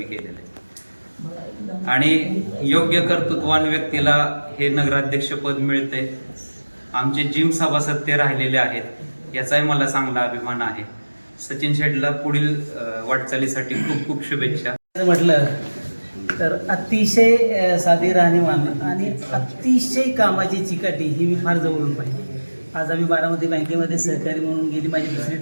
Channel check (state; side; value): inverted; both; correlation -1.00